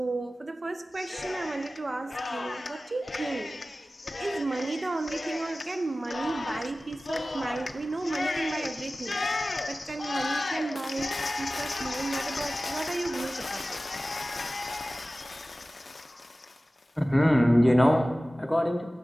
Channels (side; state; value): both; normal; correlation 0.96